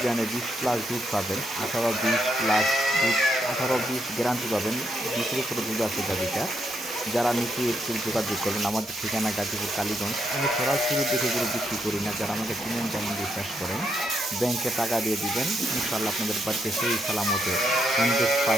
বিয়ানে 20+ দুধ পাবেন, 18-20+ দুধ, 18-20 গ্যারান্টি পাবেন। 20-এর উপরে দুধ আছে গাভিটা। যারা নিচে একটু যোগাযোগ করবেন। আমাদের ঠিকানা গাজীপুর কালীগঞ্জ। আমি সরাসরি দেখে গরু বিক্রি করি না। যারা আমাকে চিনেন, যেমন বিশ্বাস করেন, ব্যাংকে টাকা দিয়ে দিবেন, ইনশাল্লাহ আপনাদের বাড়িতে সেই সালামতে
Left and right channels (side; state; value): both; normal; correlation 0.78